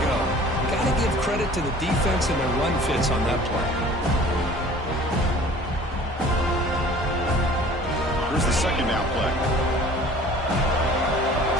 go. Got to give credit to the defense and their run fits on that play. Here's the second down play.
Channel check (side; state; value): both; normal; correlation 0.48